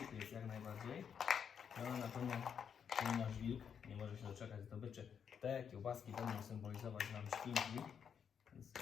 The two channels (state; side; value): quieter; right; 7.5 dB